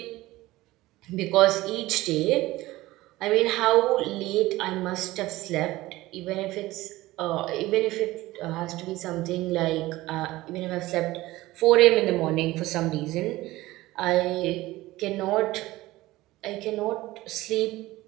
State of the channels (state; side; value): quieter; left; 18.0 dB